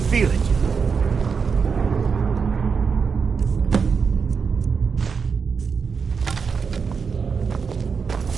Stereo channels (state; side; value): quieter; left; 5.7 dB